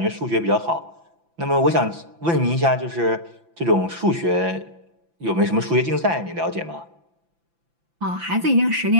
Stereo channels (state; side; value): late; left; 5.9 ms